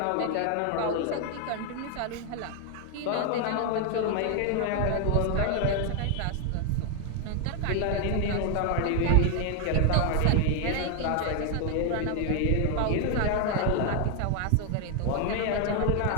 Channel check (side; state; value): both; different; correlation 0.00